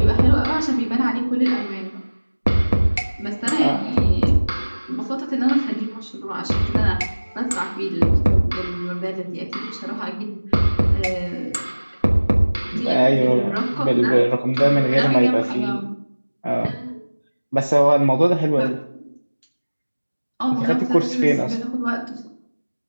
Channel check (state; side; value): inverted; both; correlation -1.00